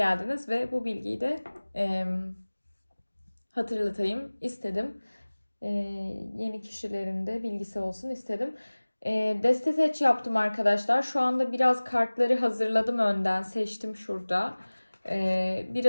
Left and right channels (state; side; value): inverted; both; correlation -1.00